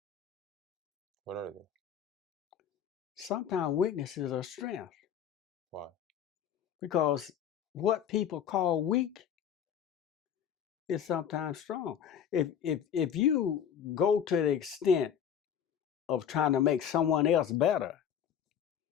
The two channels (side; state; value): right; quieter; 8.6 dB